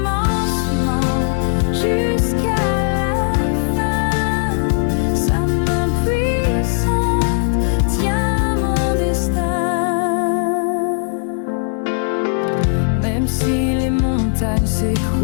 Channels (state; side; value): silent; right; 66 dB below the other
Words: jusqu'à la fin. Sa main puissante tient mon destin. Même si les montagnes